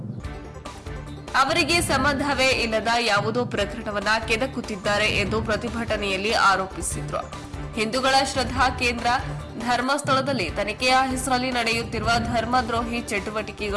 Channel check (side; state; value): both; identical; correlation 1.00